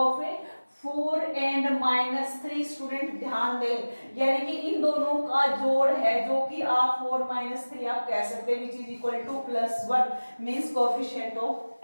4 एंड -3. स्टूडेंट ध्यान दें, यानी कि इन दोनों का जोड़ है जो कि आप 4 -3 आप कह सकते हैं which is equal to +1 means coefficient of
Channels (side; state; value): both; inverted; correlation -1.00